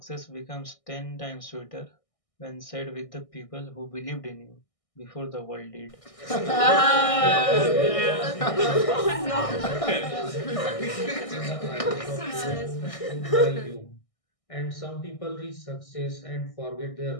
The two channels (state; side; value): late; right; 1.6 ms